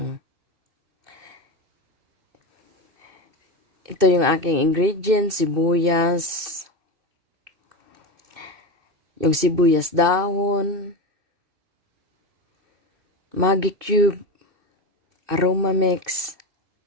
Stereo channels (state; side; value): late; left; 2.6 ms